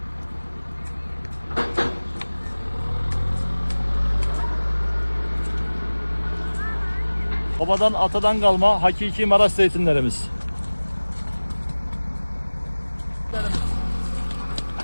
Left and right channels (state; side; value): inverted; both; correlation -1.00